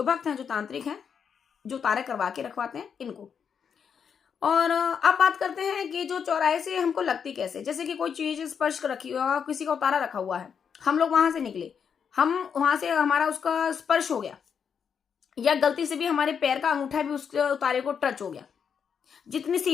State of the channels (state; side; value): quieter; right; 7.1 dB